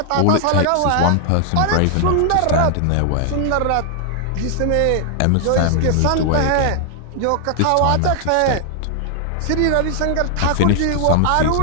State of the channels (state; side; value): different; both; correlation 0.00